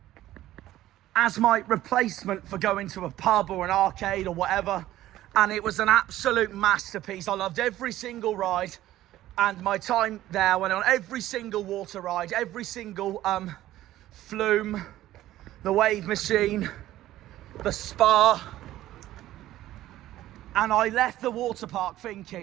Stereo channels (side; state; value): left; quieter; 14.4 dB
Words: as my replacement for going to a pub or an arcade or whatever. And it was an absolute masterpiece. I loved every single ride, and my time there went on every single water ride, every single flume, the wave machine, the spa. And I left the water park